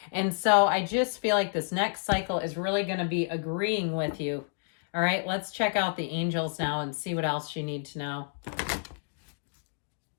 And so I just feel like this next cycle is really going to be agreeing with you. All right, let's check out the angels now and see what else you need to know.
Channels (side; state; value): right; silent; digital silence